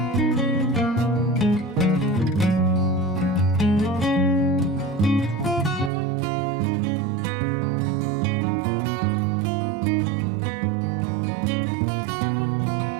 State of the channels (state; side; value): drops out; left; at 5.9 s